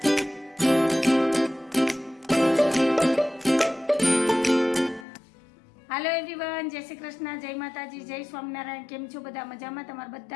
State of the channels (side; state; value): right; drops out; at 5.1 s